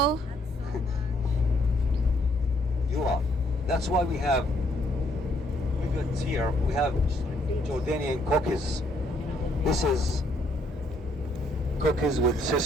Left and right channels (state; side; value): normal; both; correlation 0.69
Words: You are. That's why we got here, we have Jordanian cookies. This is cookies with